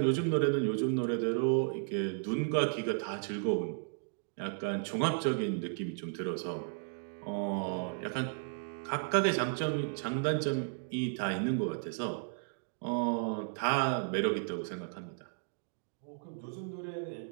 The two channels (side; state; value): left; silent; digital silence